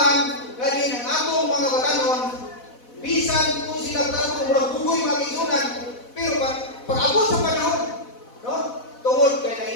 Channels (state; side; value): late; right; 4.1 ms